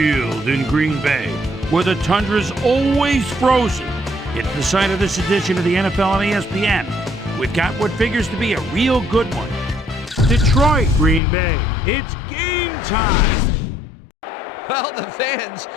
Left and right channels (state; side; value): drops out; right; at 11.2 s